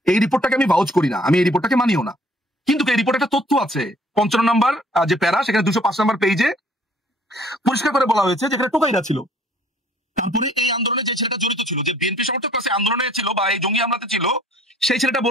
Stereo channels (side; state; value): both; normal; correlation 0.58